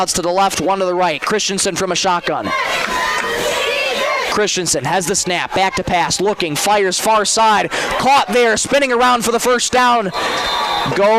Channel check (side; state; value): both; identical; correlation 1.00